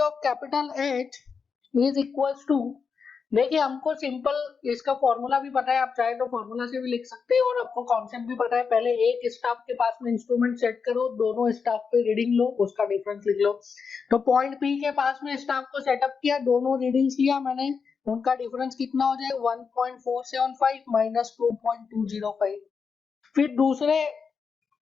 of capital H is equals to, देखिए हमको सिंपल इसका फॉर्मूला भी पता है, आप चाहे तो फॉर्मूला से भी लिख सकते हैं, और आपको कॉन्सेप्ट भी पता है। पहले एक स्टाफ के पास में इंस्ट्रूमेंट सेट करो, दोनों स्टाफ पे रीडिंग लो, उसका डिफरेंस लिख लो। तो पॉइंट P के पास में स्टाफ को सेटअप किया, दोनों रीडिंग्स लिया मैंने उनका डिफरेंस कितना हो जाएगा 1.475 माइनस 2.205। फिर दूसरे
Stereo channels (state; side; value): quieter; right; 5.7 dB